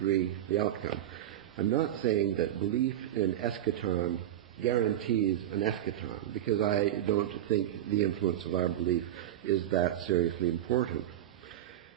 the outcome. I'm not saying that belief in eschaton guarantees an eschaton, because I don't think the influence of our belief is that seriously important.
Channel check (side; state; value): left; quieter; 12.3 dB